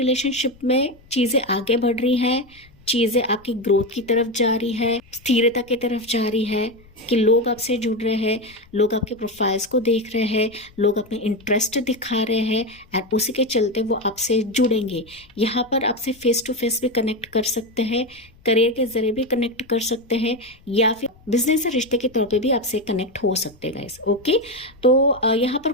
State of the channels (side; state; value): left; noise; rumble, 27 dB below the sound